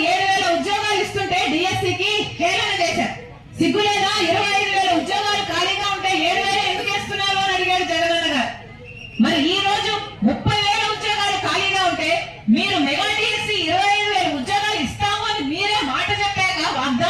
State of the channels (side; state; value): both; identical; correlation 1.00